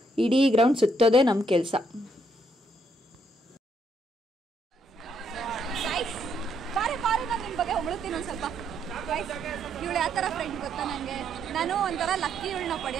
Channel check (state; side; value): normal; both; correlation 0.73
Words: ಇಡೀ ಗ್ರೌಂಡ್ ಸುತ್ತೋದೇ ನಮ್ಮ ಕೆಲಸ. ಬಾರಿ ನಾನು ನಿಮ್ಮ ಬಗ್ಗೆ ಹೊಗಳುತ್ತೀನಿ ಒಂದು ಸ್ವಲ್ಪ. ಇವಳು ಯಾವ ಥರ ಫ್ರೆಂಡ್ ಗೊತ್ತಾ ನನಗೆ? ನಾನು ಒಂಥರ ಲಕ್ಕಿ ಇವಳನ್ನ